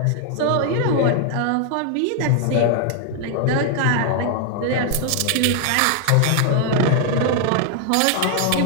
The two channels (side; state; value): both; different; correlation 0.00